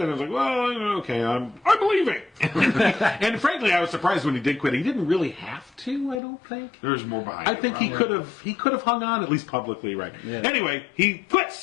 And I was like, well, okay, I'm leaving. And frankly, I was surprised when he did quit. He didn't really have to, I don't think. There's more behind it. I think he could have hung on, at least publicly, right? Yeah. Anyway, he quits.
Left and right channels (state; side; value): drops out; right; at 6.2 s